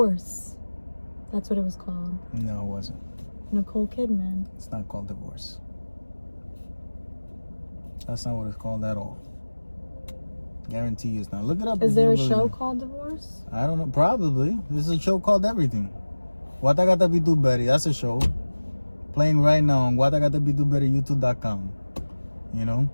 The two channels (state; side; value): inverted; both; correlation -1.00